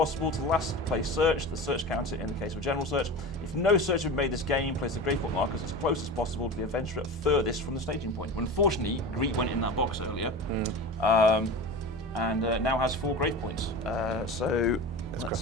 to the last placed search. The search counter in the case of a general search. If no search had been made this game, place the grave point markers as close as possible to the adventurer furthest from the staging point. Unfortunately, Greet went in that box earlier, and now has 4 grave points. So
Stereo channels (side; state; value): both; normal; correlation 0.30